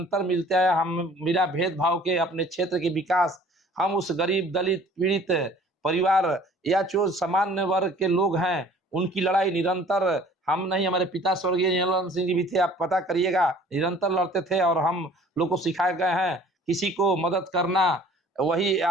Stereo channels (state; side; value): normal; both; correlation 0.51